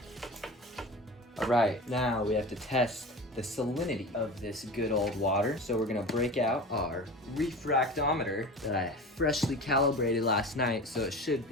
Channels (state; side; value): normal; both; correlation 0.33